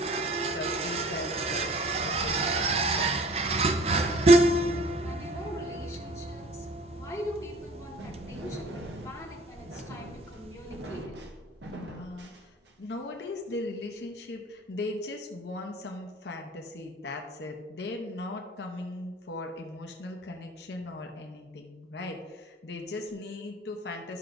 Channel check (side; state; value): both; normal; correlation 0.50